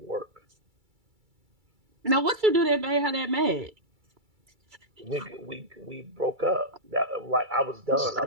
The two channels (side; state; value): left; late; 2.3 ms